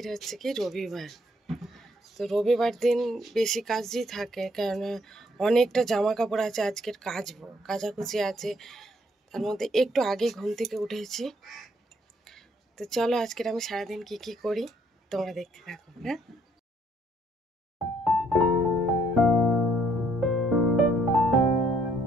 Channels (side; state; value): both; normal; correlation 0.67